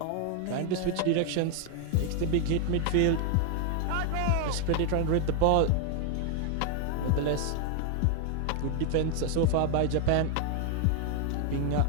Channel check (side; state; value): both; different; correlation 0.00